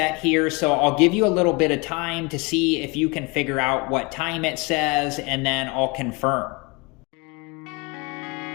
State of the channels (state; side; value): quieter; right; 27.4 dB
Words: here, so I'll give you a little bit of time to see if you can figure out what time it says, and then I'll confirm.